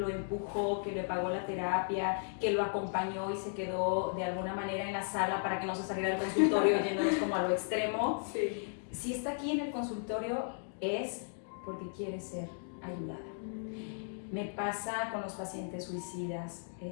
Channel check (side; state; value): right; silent; digital silence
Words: empujó, que le pagó la terapia, que lo acompañó y se quedó de alguna manera en la sala para que no se saliera del consultorio yéndonos como a lo extremo, sí. Si está aquí en el consultorio es porque quiere ser ayudada. Me pasa con los pacientes suicidas,